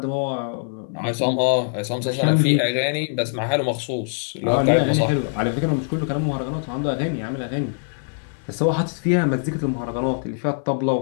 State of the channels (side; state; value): right; silent; 64 dB below the other